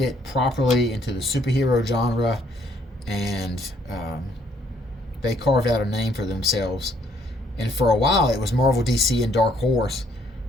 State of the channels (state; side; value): normal; both; correlation 0.67